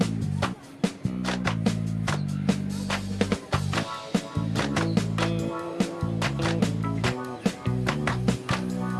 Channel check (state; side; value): identical; both; correlation 1.00